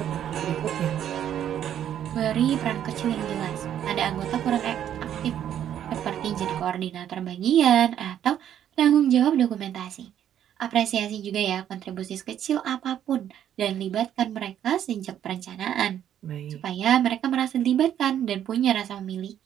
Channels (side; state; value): left; quieter; 10.2 dB